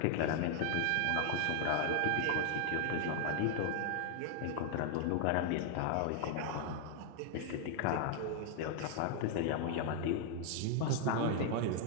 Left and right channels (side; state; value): both; different; correlation 0.00